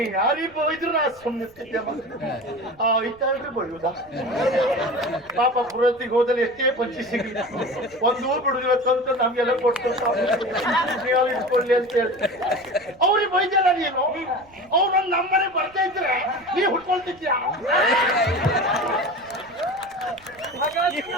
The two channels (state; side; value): noise; right; rumble, 28 dB below the sound